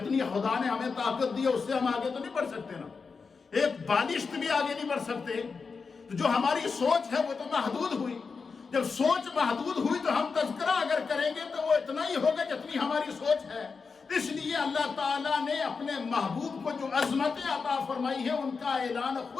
خدا نے ہمیں طاقت دی ہے اس سے ہم آگے تو نہیں بڑھ سکتے نا، ایک بالشت بھی آگے نہیں بڑھ سکتے۔ تو جو ہماری سوچ ہے وہ تو محدود ہوئی، جب سوچ محدود ہوئی تو ہم تذکرہ اگر کریں گے تو وہ اتنا ہی ہوگا جتنی ہماری سوچ ہے۔ اس لیے اللہ تعالیٰ نے اپنے محبوب کو جو عظمتیں عطا فرمائی ہے ان کا اعلان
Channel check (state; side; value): quieter; right; 5.0 dB